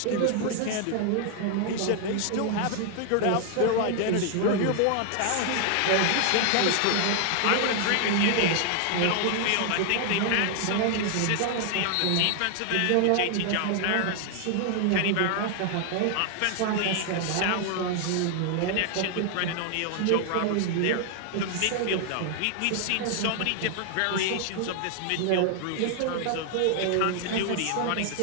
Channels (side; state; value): both; different; correlation 0.00